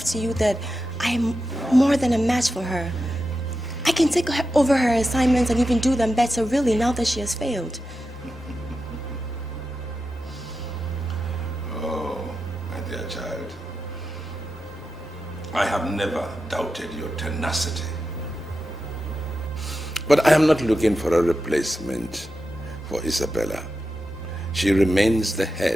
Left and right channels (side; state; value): both; normal; correlation 0.90